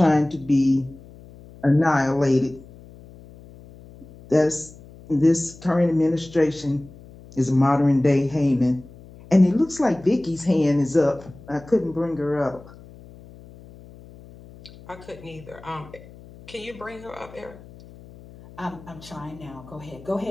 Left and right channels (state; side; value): noise; left; hum, 20 dB below the sound